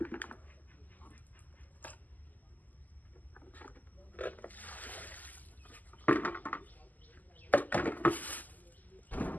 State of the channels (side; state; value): right; late; 0.082 ms